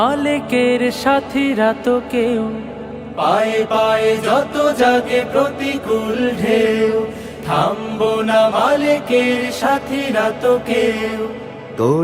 সাথীরা তো কেউ। পায়ে পায়ে যত জাগে প্রতিকূল ঢেউ, থামবো না মালিকের সাথীরা তো কেউ।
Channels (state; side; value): identical; both; correlation 1.00